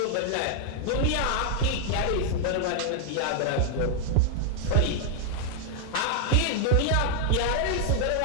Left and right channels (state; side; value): different; both; correlation 0.00